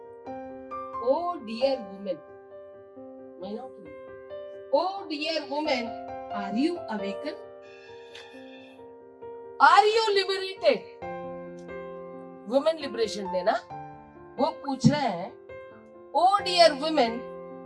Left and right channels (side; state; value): both; identical; correlation 1.00